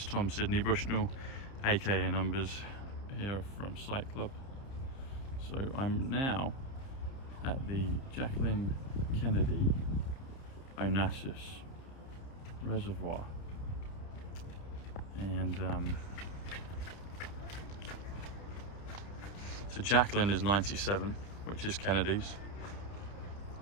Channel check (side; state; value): right; late; 30 ms